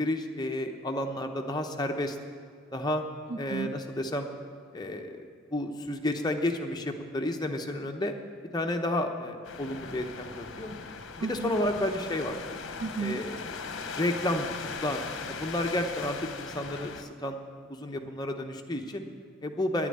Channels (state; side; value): normal; both; correlation 0.54